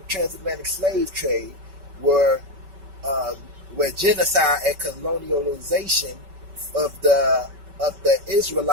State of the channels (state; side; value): late; left; 5.2 ms